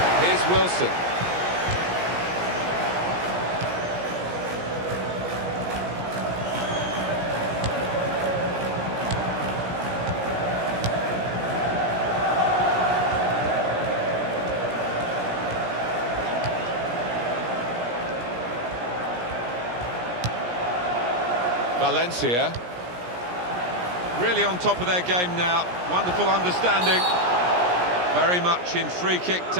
Here's Wilson. Valencia, really on top of their game now. Wonderful understanding. Very much in free kick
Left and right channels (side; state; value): left; late; 17 ms